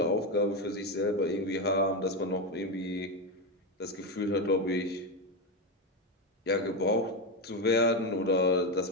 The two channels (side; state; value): both; normal; correlation 0.11